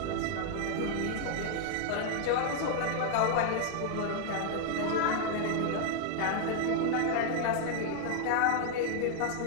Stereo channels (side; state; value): both; different; correlation 0.00